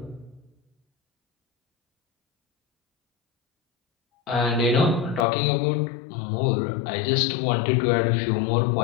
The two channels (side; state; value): right; drops out; at 5.2 s